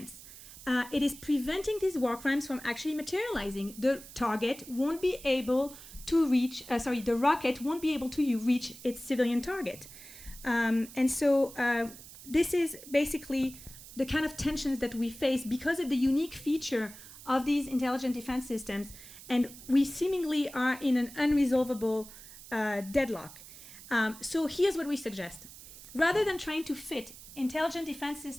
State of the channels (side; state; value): right; noise; hiss, 16 dB below the sound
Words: It is preventing these war crimes from actually materializing. The target won't be able to reach, the rocket won't be able to reach its civilian target. And so this is basically the kind of tensions that we face because of the unique feature of these intelligent defense systems. And we seemingly are in an unresolvable deadlock. So here's what we suggest. Rather than trying to fit intelligent defense